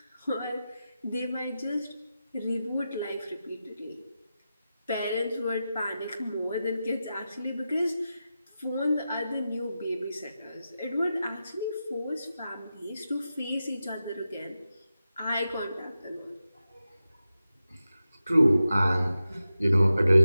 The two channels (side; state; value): both; inverted; correlation -0.92